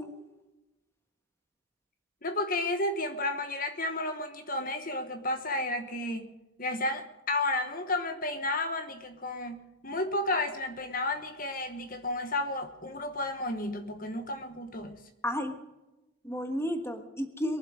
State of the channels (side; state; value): both; normal; correlation -0.06